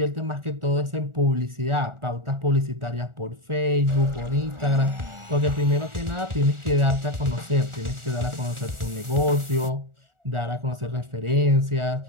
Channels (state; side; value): late; left; 1.4 ms